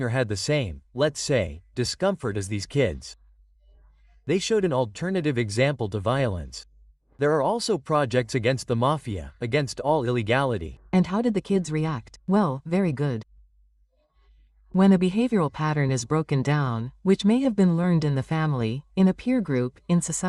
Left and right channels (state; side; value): identical; both; correlation 1.00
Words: or had the same, let's say, discomfort as these kids. They showed an alternative example to violence. There are also projects against the mafia, against all illegality. And how did the kids react? Well, very good. When a behavioral pattern is broken down, which may have been learned in the family, in a peer group, in